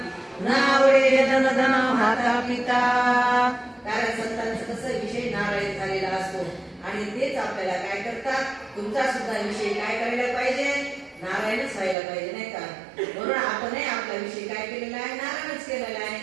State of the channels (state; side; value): drops out; left; at 12.0 s